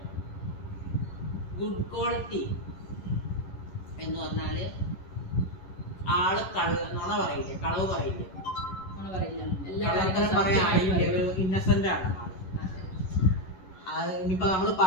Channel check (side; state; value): right; late; 11 ms